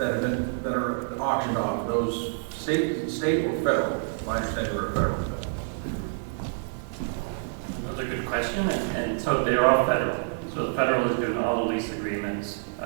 auctioned off, those state or federal? My understanding are federal. That's a good question, and so they're all federal. So the federal is doing all the lease agreements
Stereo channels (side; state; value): left; silent; digital silence